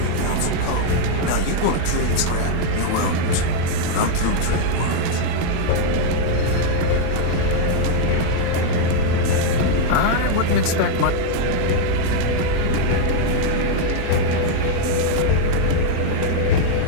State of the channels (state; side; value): different; both; correlation 0.00